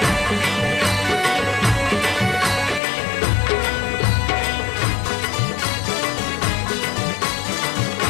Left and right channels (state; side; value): drops out; right; at 2.8 s